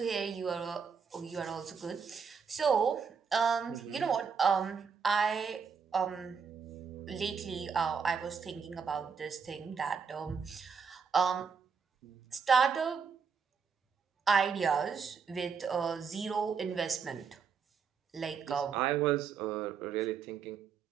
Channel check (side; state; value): left; quieter; 6.1 dB